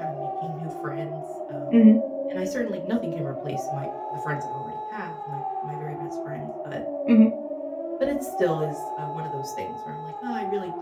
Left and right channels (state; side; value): identical; both; correlation 1.00